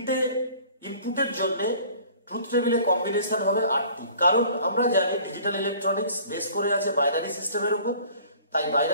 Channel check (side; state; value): both; inverted; correlation -0.50